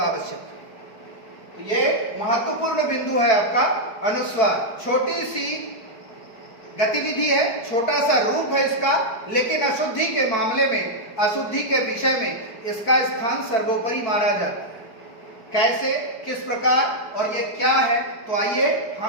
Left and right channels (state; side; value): late; right; 4.6 ms